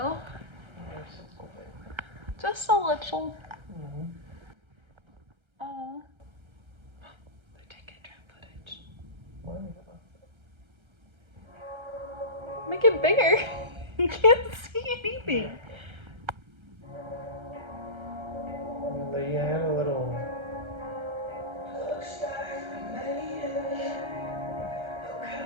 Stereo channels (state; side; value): late; left; 1.3 ms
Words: Just a little bit. Just a little. Mm-hmm. Oh. They're taking drone footage. Make it bigger. You can't see anything. They had a little.